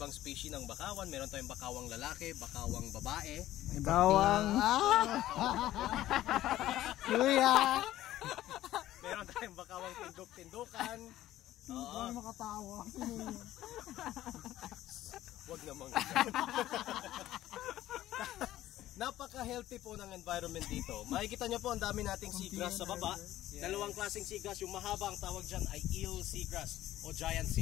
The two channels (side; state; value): right; quieter; 14.2 dB